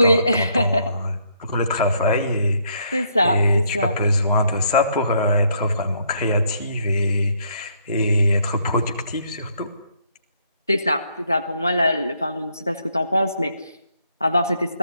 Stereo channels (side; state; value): both; inverted; correlation -0.71